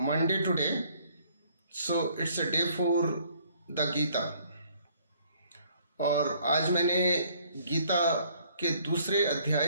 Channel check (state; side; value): inverted; both; correlation -0.62